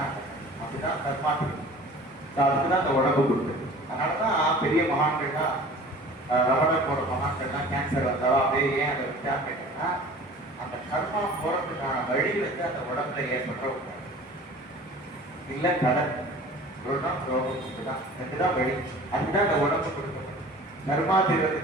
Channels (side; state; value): both; normal; correlation 0.44